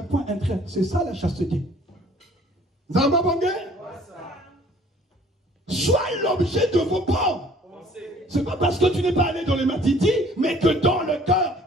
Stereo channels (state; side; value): normal; both; correlation 0.55